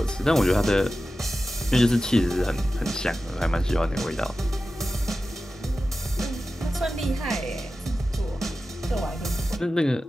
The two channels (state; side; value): normal; both; correlation 0.94